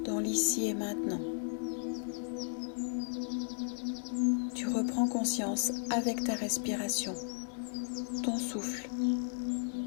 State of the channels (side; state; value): right; silent; digital silence